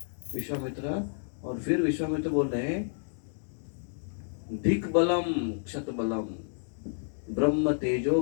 विश्वामित्र। और फिर विश्वामित्र बोल रहे हैं, धिक बलम क्षत बलम ब्रह्म तेजो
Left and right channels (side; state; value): right; silent; digital silence